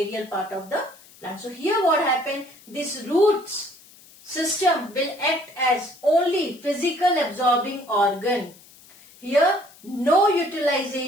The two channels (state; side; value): noise; left; hiss, 24 dB below the sound